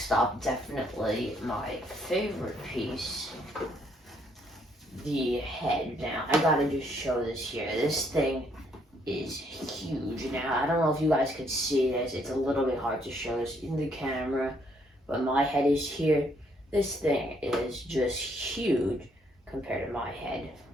up, definitely my favorite piece, the head. Now, I gotta just show this here. This thing is huge. Now, I don't know if you guys could see this. It's a little bit hard to show this in the camera, but my head is here. This thing is just huge compared to my head.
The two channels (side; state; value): both; normal; correlation 0.69